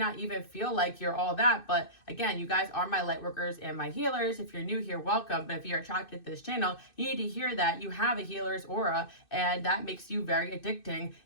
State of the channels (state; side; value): late; right; 2.6 ms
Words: even feel like you're all that, but again, you guys are my light workers and my healers. If you're new here, welcome. But if you're attracted to this channel, you need to hear that you have a healer's aura and that makes you very addicting.